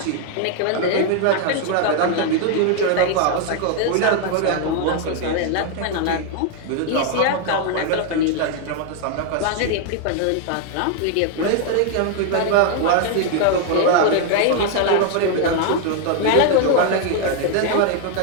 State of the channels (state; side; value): different; both; correlation 0.00